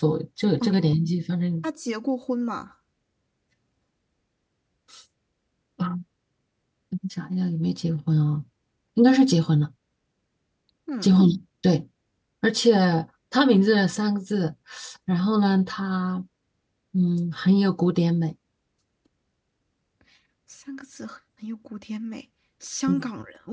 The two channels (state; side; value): identical; both; correlation 1.00